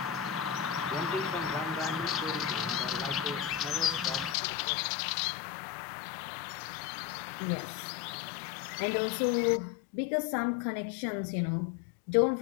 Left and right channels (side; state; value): right; drops out; at 4.4 s